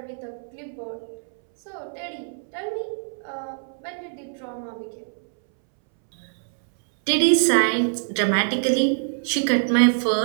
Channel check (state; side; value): silent; left; 62 dB below the other